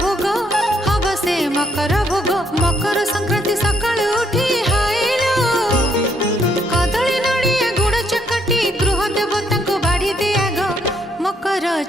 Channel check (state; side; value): normal; both; correlation 0.70